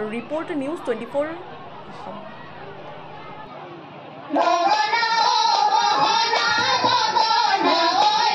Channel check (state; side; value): identical; both; correlation 1.00